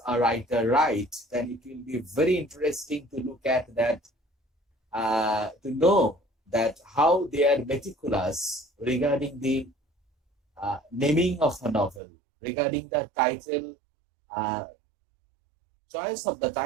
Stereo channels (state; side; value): drops out; left; at 12.0 s